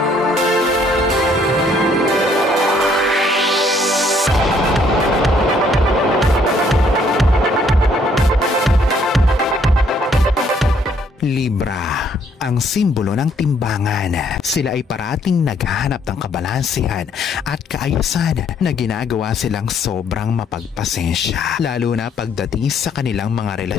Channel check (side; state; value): both; normal; correlation 0.66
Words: Libra, ang simbolo ng timbangan. Sila ay parating naghahanap ng kabalansihan at kaayusan na ginagawa silang sobrang mapagpasensya. Lalo na pagdating sa kanilang mga